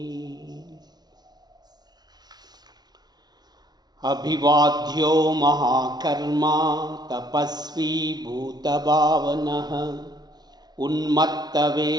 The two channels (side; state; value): left; late; 0.19 ms